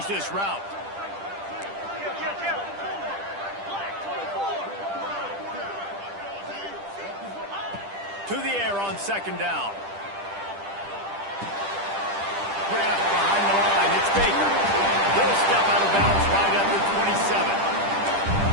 this route. To the air on second down. Grabbed behind the line. It's Baker. He'll step out of bounds right at the 27.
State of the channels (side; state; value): left; late; 10 ms